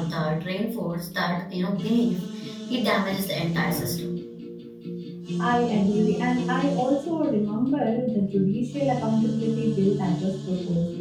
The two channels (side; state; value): both; identical; correlation 1.00